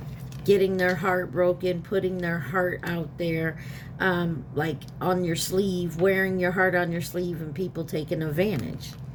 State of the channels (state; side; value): identical; both; correlation 1.00